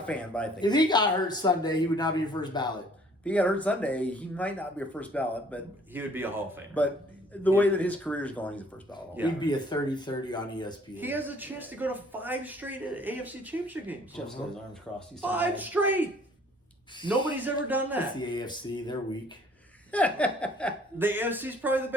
fan, but I think If he got hurt Sunday, he would not be a first ballot. if he got hurt Sunday, he might not be a first ballot, but He would be a Hall of Famer. but the way that his career is going, he's a first ballot. Yeah. He'd be a 30-30 on ESPN. He has a chance to go to 5 straight AFC Championship games. Jeff's got his arms crossed. He's 5 straight. Nobody's ever done It's that. the AFC. They're weak. The AFC is probably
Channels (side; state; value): both; normal; correlation 0.57